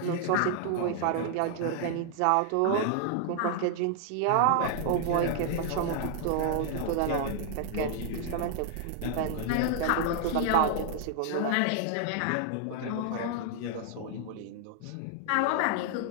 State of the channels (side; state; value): both; different; correlation 0.00